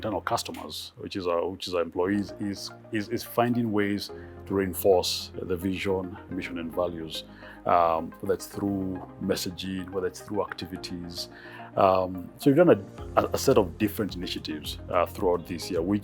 customers, which is our employees, is finding ways to reinforce the vision, mission, and values, whether it's through messaging, whether it's through activities. So we've done a set of different initiatives throughout this year,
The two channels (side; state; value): both; identical; correlation 1.00